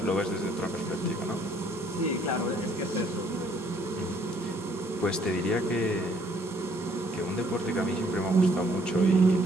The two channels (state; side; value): normal; both; correlation 0.64